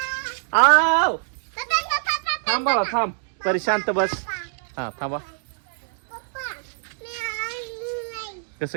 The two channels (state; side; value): silent; left; digital silence